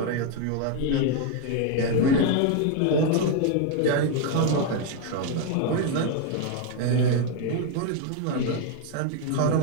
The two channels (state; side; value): different; both; correlation 0.01